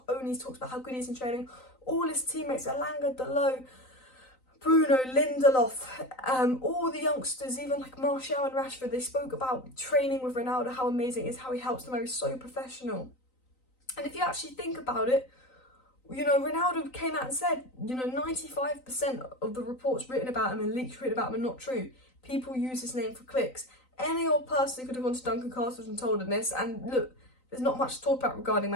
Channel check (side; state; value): right; late; 3.9 ms